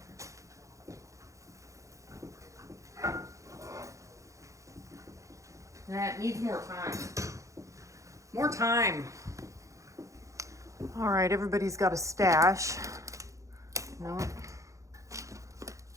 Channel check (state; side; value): late; left; 0.15 ms